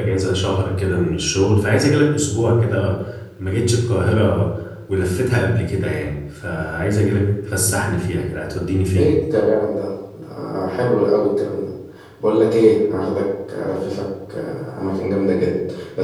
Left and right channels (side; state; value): both; identical; correlation 1.00